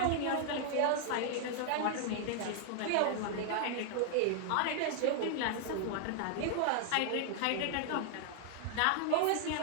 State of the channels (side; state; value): both; different; correlation 0.00